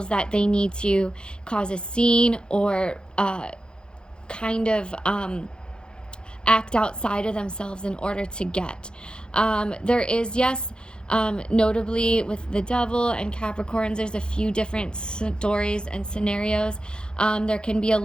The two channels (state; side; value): late; right; 0.049 ms